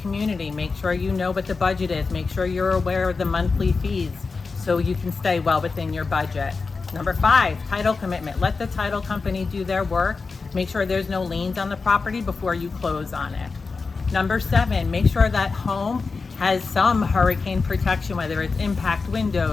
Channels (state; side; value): quieter; right; 4.4 dB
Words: make sure you know what the budget is. Make sure you're aware of the monthly fees so you can stay well within your budget. Number 5, title commitment. Let the title company do their work. Make sure there's no liens on the property before you close on it. Number 7, make sure that home has some hurricane protection, whether it's impact